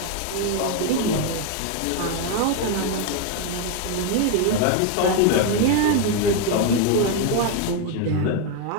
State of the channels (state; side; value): different; both; correlation 0.01